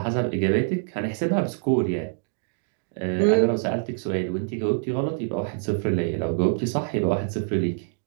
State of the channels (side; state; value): left; silent; digital silence